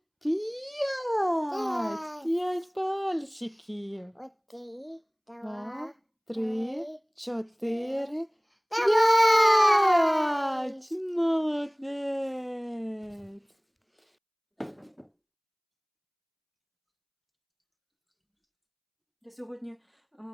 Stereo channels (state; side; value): identical; both; correlation 1.00